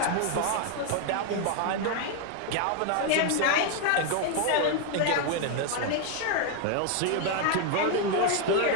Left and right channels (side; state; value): both; different; correlation 0.01